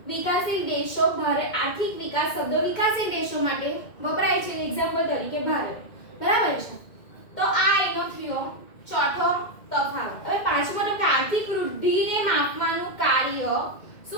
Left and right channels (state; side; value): late; right; 2.1 ms